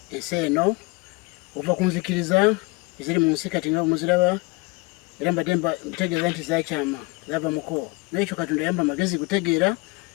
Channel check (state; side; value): quieter; right; 25.6 dB